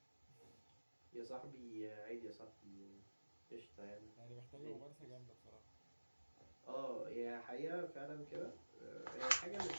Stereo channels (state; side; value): inverted; both; correlation -1.00